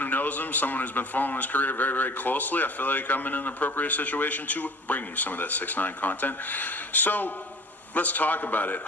knows him, someone who's been following his career very, very closely, I feel like I'm in an appropriate situation to bring you some of that 6ix9ine content. So let's talk about it.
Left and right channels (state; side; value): normal; both; correlation 0.44